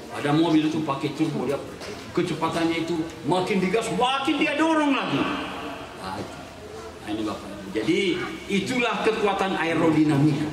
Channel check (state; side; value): identical; both; correlation 1.00